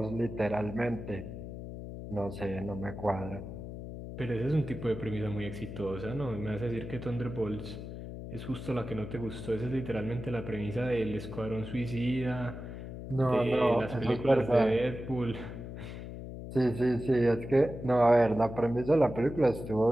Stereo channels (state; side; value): noise; left; hum, 9 dB below the sound